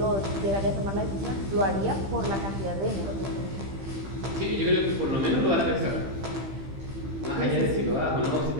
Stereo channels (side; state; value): left; late; 15 ms